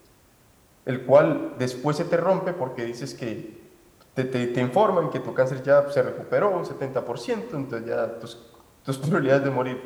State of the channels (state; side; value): identical; both; correlation 1.00